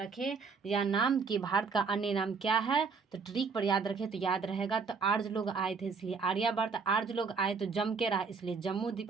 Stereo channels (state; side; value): quieter; left; 5.1 dB